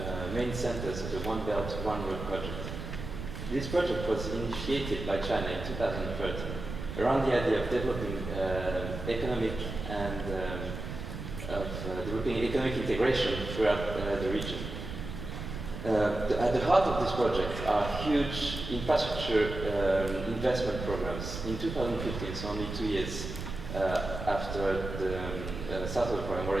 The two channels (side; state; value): right; noise; rumble, 7 dB below the sound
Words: main centers of the One Belt, One Road project. This project was initiated by China in 2013 around the idea of developing economic and developing economic integration throughout the region. At the heart of this project are huge infrastructure investment programs. In 2015, so only 2 years after the start of the program,